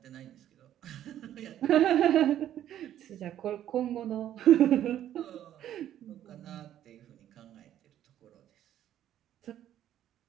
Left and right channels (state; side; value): quieter; left; 11.5 dB